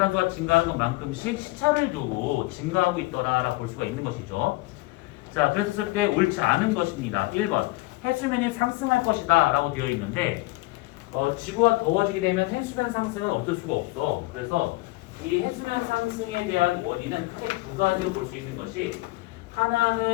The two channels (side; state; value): right; quieter; 21.3 dB